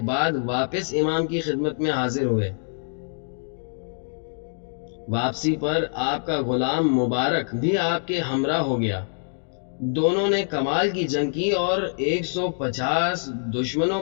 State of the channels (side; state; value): right; silent; digital silence